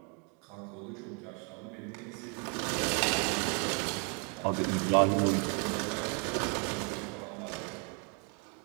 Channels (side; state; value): left; quieter; 36.2 dB